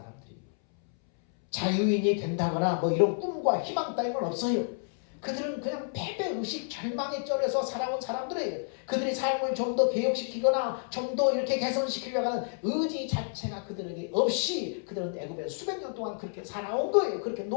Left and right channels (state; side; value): silent; right; 58 dB below the other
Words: 자유인이 된다거나 뭐 이런 꿈과 희망 따위는 없어요. 그들은 그냥 패배의식, 절망에 쩔어서 살아온 사람들이에요. 그들이 삶을 좀 더 개혁시키거나 좀 더 이렇게 개선시키려고 하는 의지 자체가 그들에게 없이 그들은 애굽에 수백 년 동안 그렇게 살아온 거예요. 그렇게